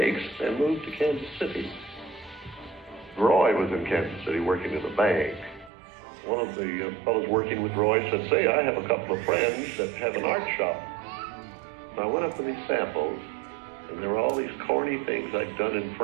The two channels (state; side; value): drops out; left; at 5.7 s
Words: and moved to Kansas City. Roy was in Kansas City working in a bank. One of the fellows working with Roy said, say, I have a couple of friends that have an art shop. And I went up to these samples, and there were all these corny things I'd done in